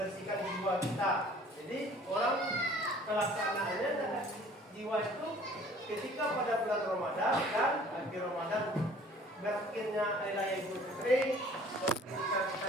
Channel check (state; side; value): normal; both; correlation 0.52